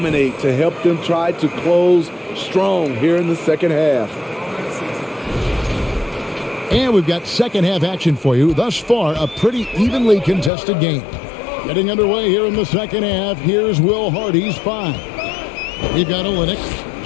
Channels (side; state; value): right; drops out; at 10.5 s